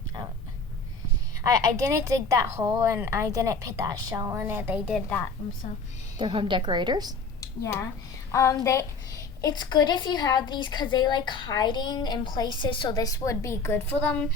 I didn't dig that hole and I didn't put that shell in it. They did that themselves. They're home decorators? Yeah. It's good if you have these because they like hiding in places, so this would be good for them.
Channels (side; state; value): right; quieter; 3.8 dB